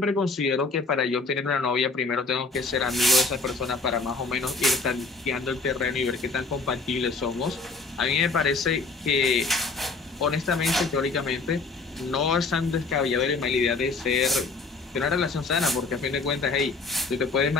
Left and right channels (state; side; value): quieter; right; 3.9 dB